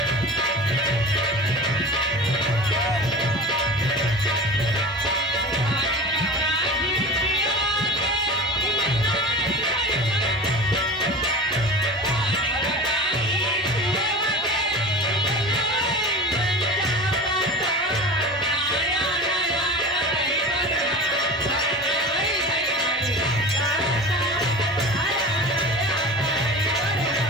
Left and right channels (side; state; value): both; normal; correlation 0.34